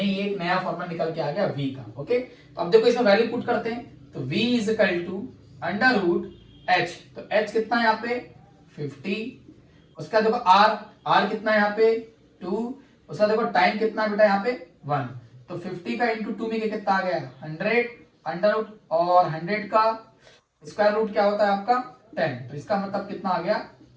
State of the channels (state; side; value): identical; both; correlation 1.00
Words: ये एक नया फॉर्मूला निकल के आ गया V का। ओके, तो अब देखो इसमें वैल्यू पुट करते हैं, तो V is equal to under root H, तो H कितना है यहाँ पे 50, उसका देखो R कितना है यहाँ पे 2, उसका देखो टाइम कितना बेटा यहाँ पे 1, तो 50 का इंटू 2 में कितना आ गया 100, अंडर रूट और 100 का स्क्वायर रूट क्या होता है आपका 10, तो इसका मतलब कितना आ गया